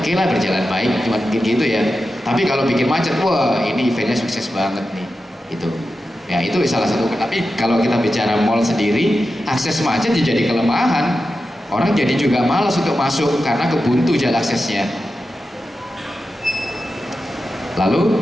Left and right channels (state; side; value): normal; both; correlation 0.91